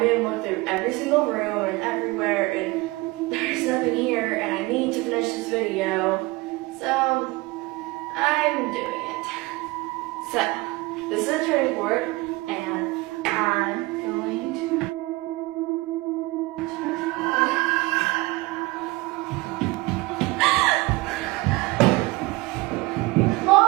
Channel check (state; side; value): quieter; left; 22.7 dB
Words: made him look through every single room and everywhere, and there's nothing here, and I need to finish this video, so I'm doing it. So, this is a turning board, and I'm going to